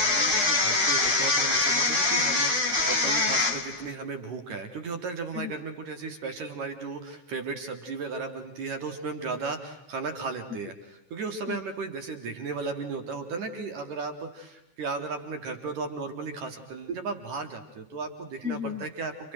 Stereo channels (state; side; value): late; left; 11 ms